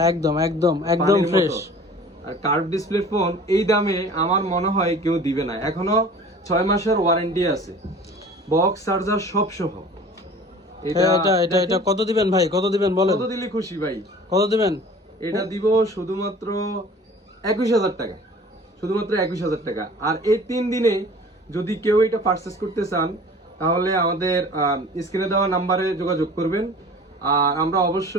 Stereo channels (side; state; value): both; normal; correlation 0.44